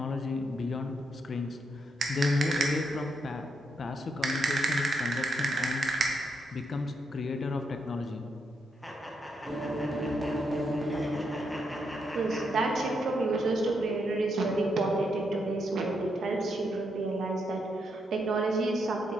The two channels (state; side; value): normal; both; correlation 0.79